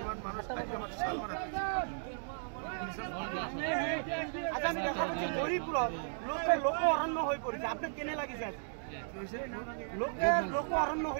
ইমান মানুহ আজি আমাৰ চালমাৰা হৰিপুৰত লোক অৰণ্য হৈ পৰিছে আপোনাক কেনে লাগিছে লোক অৰণ্য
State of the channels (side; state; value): left; silent; digital silence